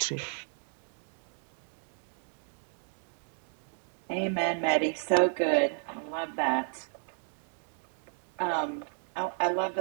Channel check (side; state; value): left; silent; 56 dB below the other